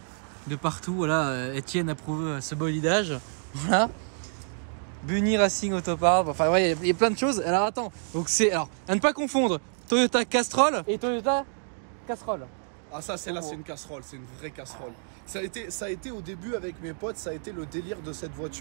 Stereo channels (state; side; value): silent; left; digital silence